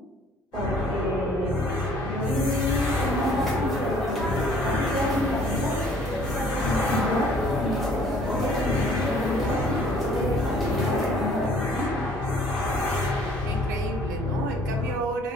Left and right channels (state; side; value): normal; both; correlation 0.57